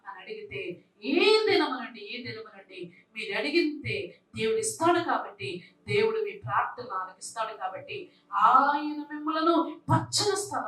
అని అడిగితే ఏ దినము నుండి మీరు అడిగితే దేవుడు ఇస్తాడు. కాబట్టి దేవుడు మీ ప్రార్థన ఆలకిస్తాడు. కాబట్టి ఆయన మిమ్మలను పచ్చని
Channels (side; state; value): both; identical; correlation 1.00